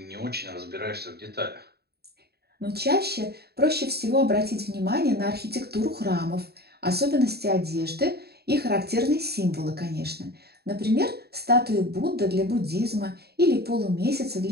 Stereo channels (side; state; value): left; late; 0.47 ms